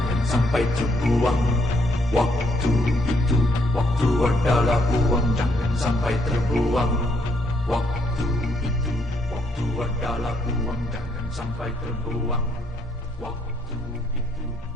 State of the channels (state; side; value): normal; both; correlation 0.72